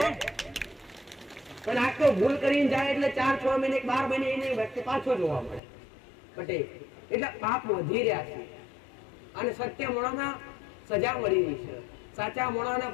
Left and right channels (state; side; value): drops out; right; at 5.6 s